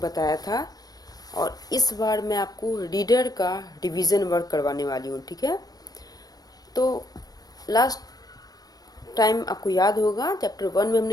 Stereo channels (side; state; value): right; late; 0.19 ms